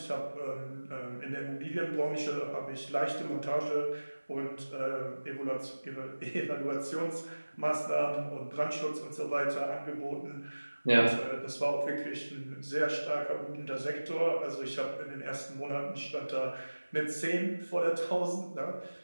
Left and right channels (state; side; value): inverted; both; correlation -1.00